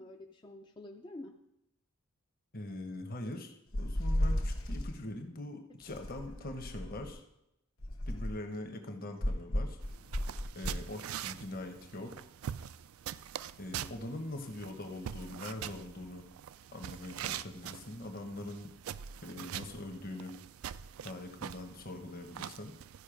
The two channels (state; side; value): normal; both; correlation 0.74